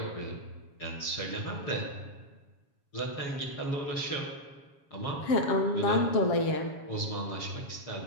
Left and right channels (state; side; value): late; right; 7.2 ms